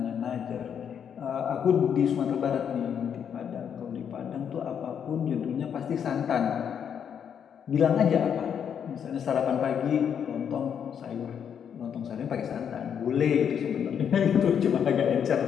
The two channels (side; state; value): right; quieter; 8.1 dB